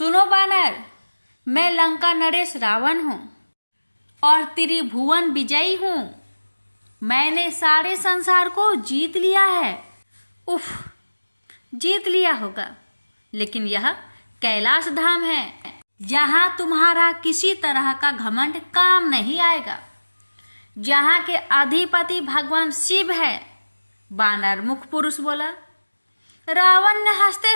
बानर, मैं लंका नरेश रावण हूँ और त्रिभुवन विजयी हूँ। मैंने सारे संसार को जीत लिया है। उफ, जीत लिया होगा, लेकिन यह कैलाश धाम है। यहाँ तुम्हारा किसी तरह का घमंड काम नहीं आएगा। जहाँ के अधिपति भगवान शिव है। बानर मुख पुरुष बोला। रावण ने हंसते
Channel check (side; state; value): both; inverted; correlation -1.00